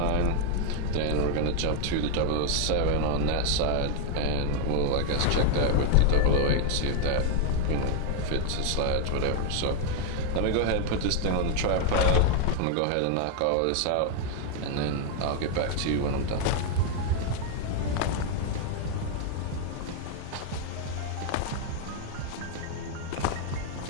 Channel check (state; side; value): different; both; correlation 0.00